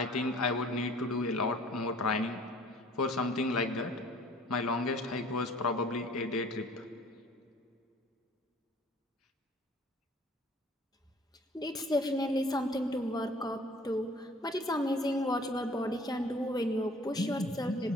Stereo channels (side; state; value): both; normal; correlation 0.52